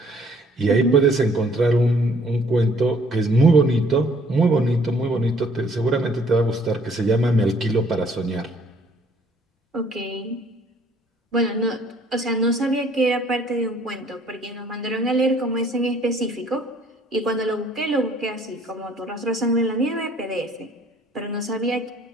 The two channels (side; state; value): both; normal; correlation 0.60